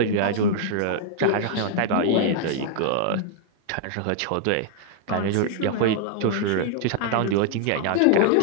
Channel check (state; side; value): different; both; correlation 0.00